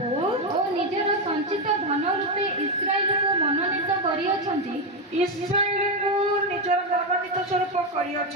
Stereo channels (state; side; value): normal; both; correlation 0.07